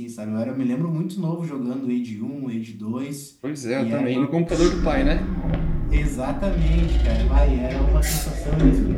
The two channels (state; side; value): identical; both; correlation 1.00